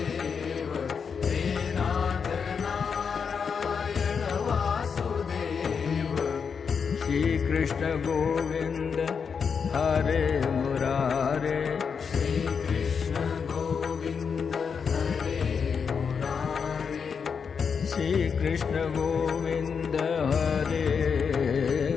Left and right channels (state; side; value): quieter; right; 6.2 dB